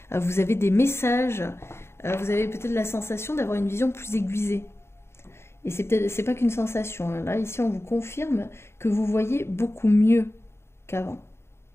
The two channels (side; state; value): right; late; 0.12 ms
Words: vous avez des messages, vous avez peut-être la sensation d'avoir une vision plus aiguisée. Et c'est pas qu'une sensation, hein. Là, ici, on vous confirme que vous voyez beaucoup mieux qu'avant.